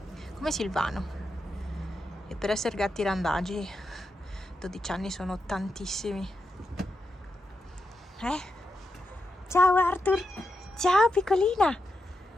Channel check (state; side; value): normal; both; correlation 0.86